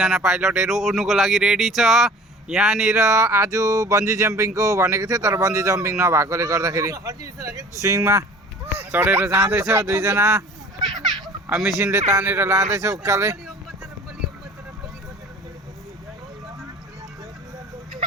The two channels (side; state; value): both; normal; correlation 0.45